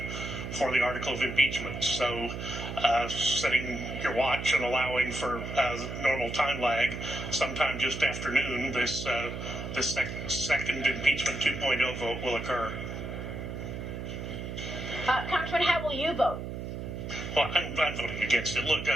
for the article of impeachment. So setting your watch and allowing for normal time lag, sometime just afternoon, this second impeachment 2.0 vote will occur. Congressman, how will you vote? Well, I'm voting against it. Look,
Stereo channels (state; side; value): noise; right; hum, 6 dB below the sound